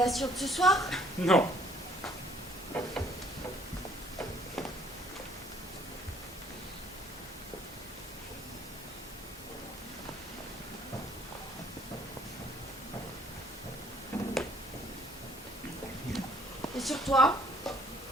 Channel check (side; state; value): both; normal; correlation 0.61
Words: de ce soir. Non. Et sur toi?